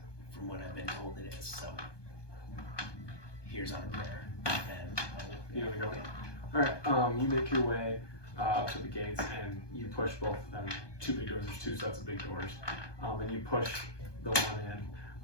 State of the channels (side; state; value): right; late; 1.2 ms